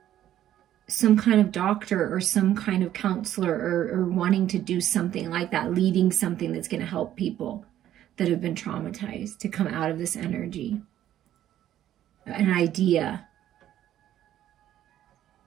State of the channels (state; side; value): quieter; left; 12.0 dB